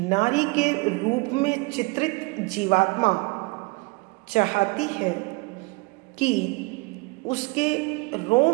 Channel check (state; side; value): quieter; left; 27.2 dB